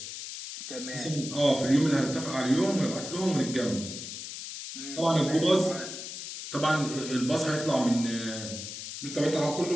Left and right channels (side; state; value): left; noise; hiss, 9 dB below the sound